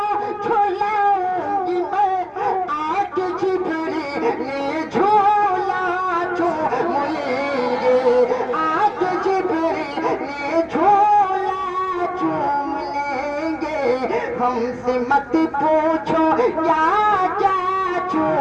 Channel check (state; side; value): identical; both; correlation 1.00